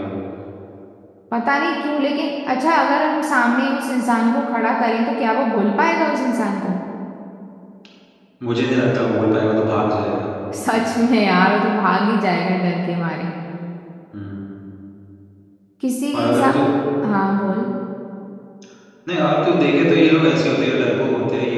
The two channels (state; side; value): identical; both; correlation 1.00